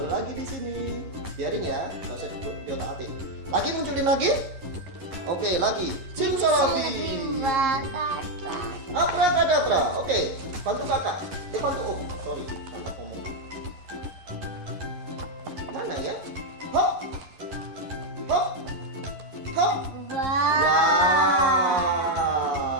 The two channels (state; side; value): late; left; 11 ms